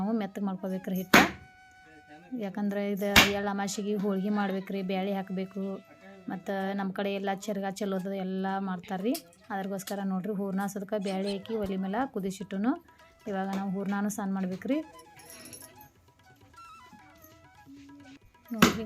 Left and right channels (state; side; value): identical; both; correlation 1.00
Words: ಮೆತ್ತಗೆ ಮಾಡ್ಕೋಬೇಕ್ರಿ ಹಿಟ್ಟು. ಯಾಕಂದ್ರೆ ಇದು ಎಳ್ಳು ಅಮಾಸೆಗೆ ಹೋಳ್ಗೆ ಮಾಡ್ಬೇಕ್ರಿ, ಬ್ಯಾಳೆ ಹಾಕಬೇಕು ಮತ್ತು ನಮ್ಮ ಕಡೆ ಎಲ್ಲ ಚರ್ಗ ಚೆಲ್ಲೋದು ಎಲ್ಲ ಮಾಡ್ತಾರೆ ರೀ. ಅದ್ರಗೋಸ್ಕರ ನೋಡ್ರಿ ಹೂರ್ಣ ಸದ್ಕ ಬ್ಯಾಳೆ ಹಾಕಿ ಒಲೆ ಮೇಲೆ ಕುದಿಸಿಟ್ಟುನು. ಇವಾಗ ನಾವು ಹೂರ್ಣನೂ ಸಣ್ಣ ಮಾಡ್ಬೇಕ್ರಿ. ನೋಡಿರಿ